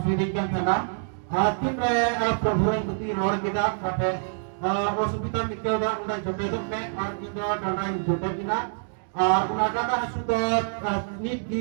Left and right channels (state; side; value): silent; left; digital silence